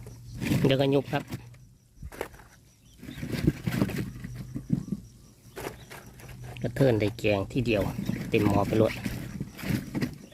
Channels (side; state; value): both; identical; correlation 1.00